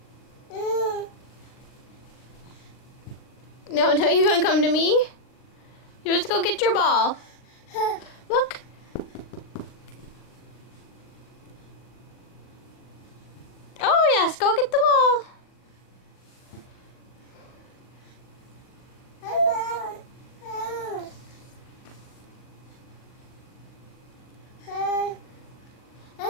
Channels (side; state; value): right; late; 40 ms